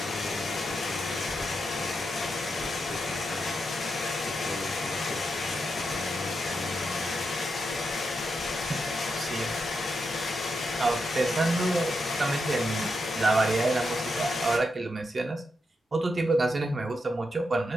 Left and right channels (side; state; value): both; normal; correlation 0.85